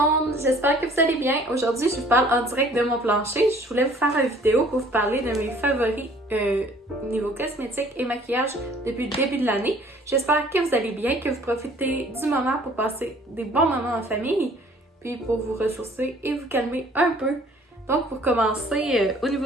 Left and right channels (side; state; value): both; normal; correlation 0.55